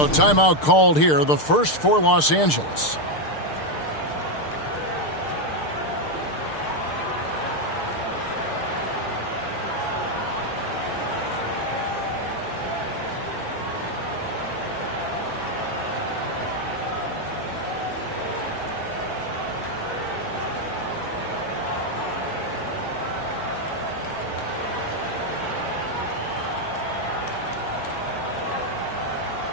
timeout called here, the first for Los Angeles.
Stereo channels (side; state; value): right; late; 6.6 ms